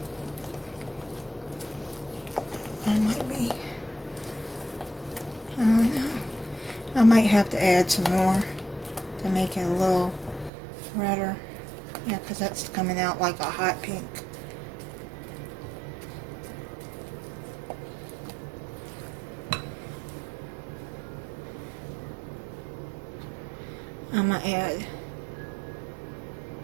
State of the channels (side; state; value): left; drops out; at 10.5 s